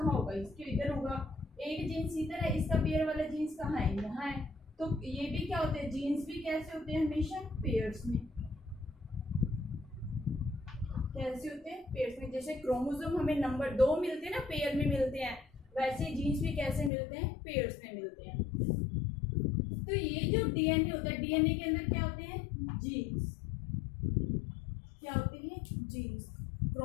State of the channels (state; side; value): drops out; right; at 16.9 s